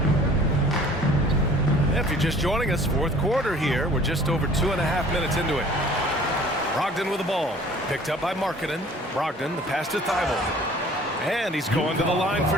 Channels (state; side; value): normal; both; correlation 0.51